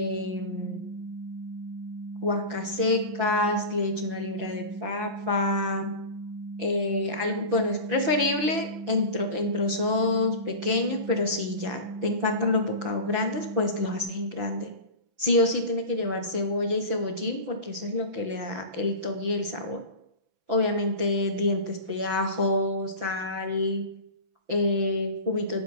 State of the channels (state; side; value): late; left; 6.0 ms